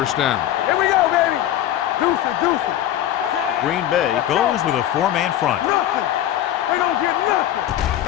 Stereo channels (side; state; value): right; quieter; 12.2 dB